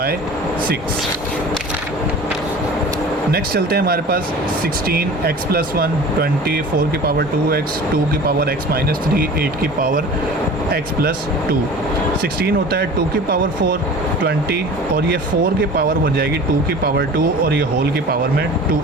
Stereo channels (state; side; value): normal; both; correlation 0.40